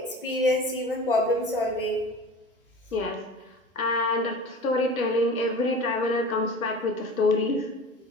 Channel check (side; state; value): both; normal; correlation 0.37